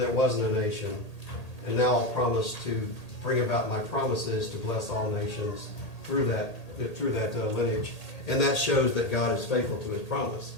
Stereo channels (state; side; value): late; right; 1.8 ms